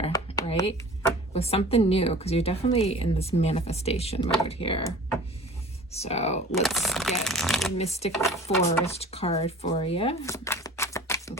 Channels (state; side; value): normal; both; correlation 0.43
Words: right? With something new, because you're definitely in this manifestation mode here. So let's get the Mystic Forest card for you. And